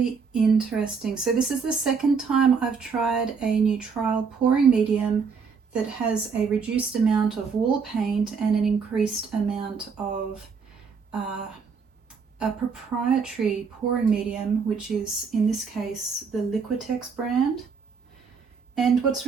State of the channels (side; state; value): left; quieter; 5.6 dB